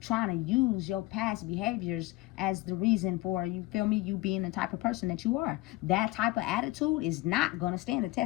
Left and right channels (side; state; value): right; quieter; 19.4 dB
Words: trying to use your past behaviors as the reason for, you feel me, you being the type of person that you are. That type of attitude is not going to stand the